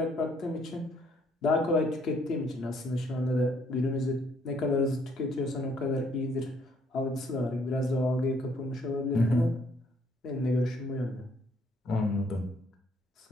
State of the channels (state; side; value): normal; both; correlation 0.66